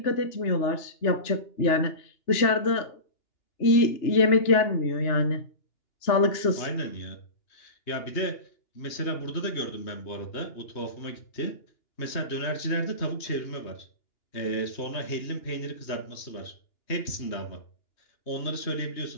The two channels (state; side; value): late; right; 2.9 ms